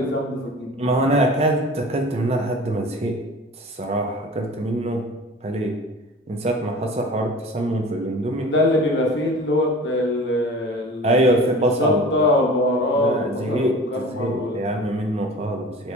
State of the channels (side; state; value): both; normal; correlation 0.40